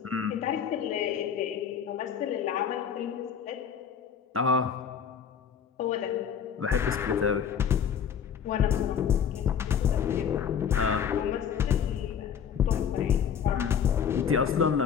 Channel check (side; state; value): right; quieter; 7.7 dB